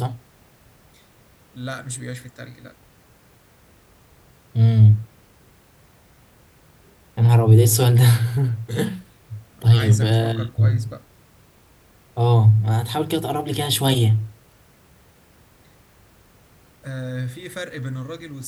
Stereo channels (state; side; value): identical; both; correlation 1.00